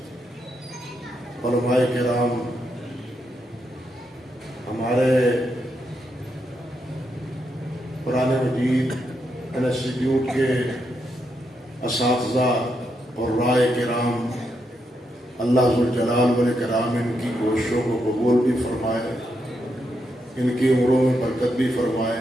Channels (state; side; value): normal; both; correlation 0.81